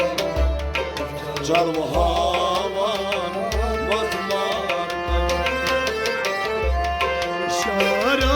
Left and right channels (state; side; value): identical; both; correlation 1.00